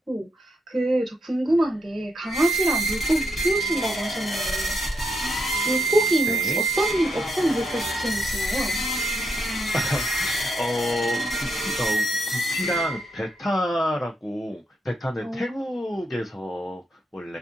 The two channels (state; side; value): normal; both; correlation 0.80